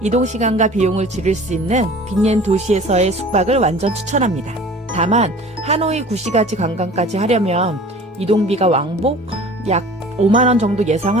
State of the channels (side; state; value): both; normal; correlation 0.44